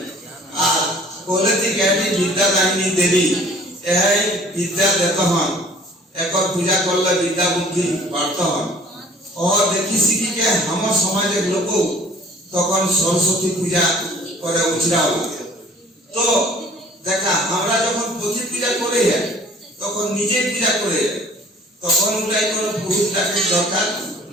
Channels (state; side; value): normal; both; correlation 0.52